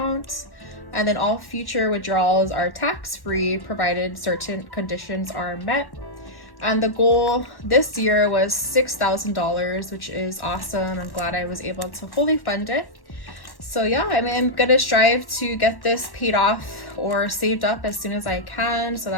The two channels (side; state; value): right; late; 1.1 ms